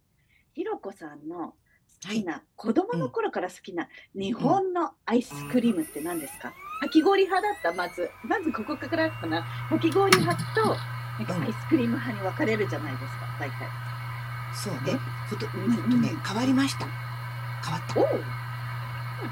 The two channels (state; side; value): identical; both; correlation 1.00